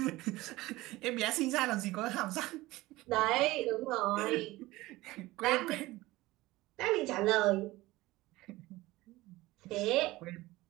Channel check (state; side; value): quieter; left; 18.9 dB